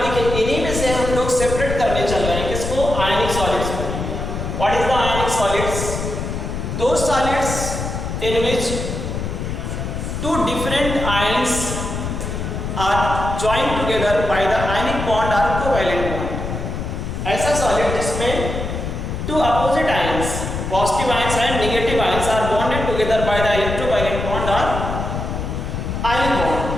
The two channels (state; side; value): noise; left; rumble, 4 dB below the sound